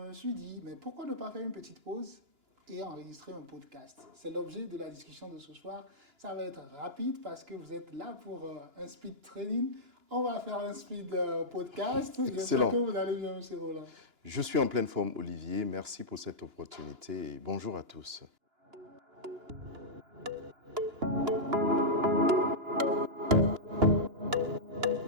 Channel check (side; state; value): left; late; 2.9 ms